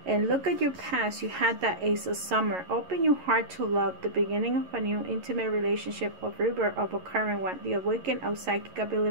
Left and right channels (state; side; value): late; left; 11 ms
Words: And look at your past. You had that Ace of Summer. Open your heart to love, the beginning of a new intimate relationship, of rebirth of a current one, the awakening of psychic